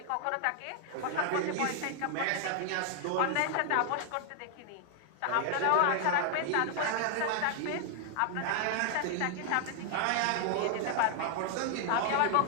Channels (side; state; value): both; different; correlation 0.00